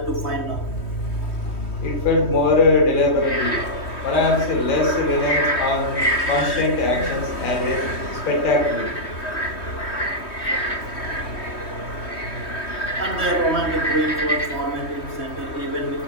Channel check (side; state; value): right; late; 3.2 ms